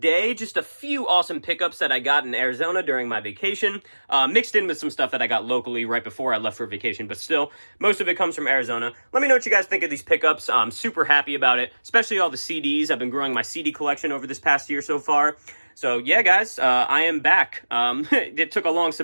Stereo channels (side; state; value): both; inverted; correlation -1.00